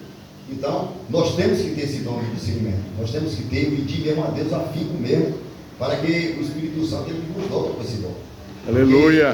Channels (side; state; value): both; identical; correlation 1.00